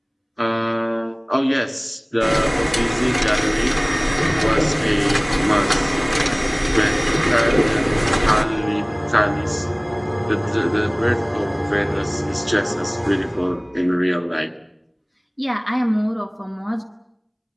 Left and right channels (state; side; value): identical; both; correlation 1.00